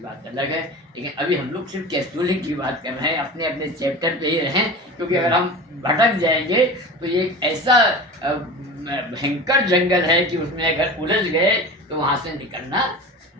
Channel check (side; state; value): both; normal; correlation 0.33